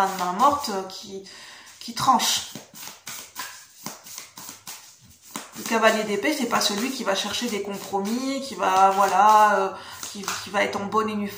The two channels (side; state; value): both; identical; correlation 1.00